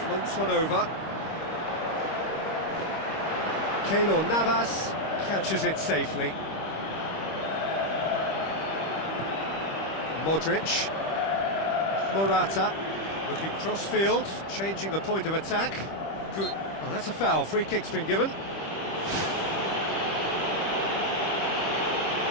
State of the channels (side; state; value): right; late; 25 ms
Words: Floats one over. Keylor Navas catches it safely. Modric. Morata looking cross-field, changing the point of attack. Good. Oh, that's a foul. Free kick's been given.